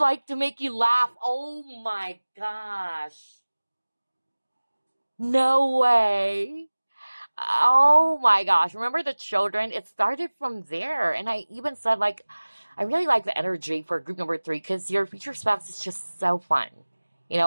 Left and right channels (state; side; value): inverted; both; correlation -1.00